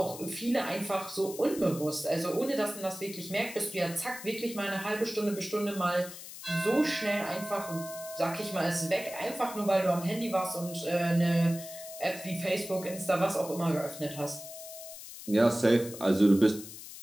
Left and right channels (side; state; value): left; noise; hiss, 13 dB below the sound